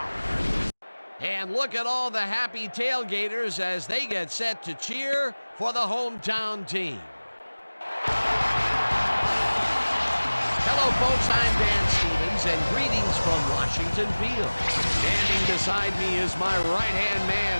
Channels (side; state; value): both; inverted; correlation -1.00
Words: And look at all the happy tailgaters as they get set to cheer for the hometown team. Hello, folks. I'm Dan Stevens, and greetings from Washington Field. Standing beside me is my right-hand